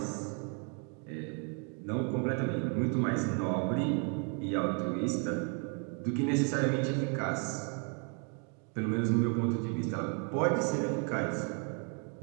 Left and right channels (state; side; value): quieter; left; 39.6 dB